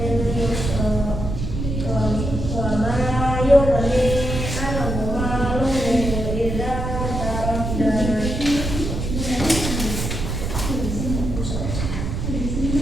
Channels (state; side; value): noise; right; rumble, 3 dB below the sound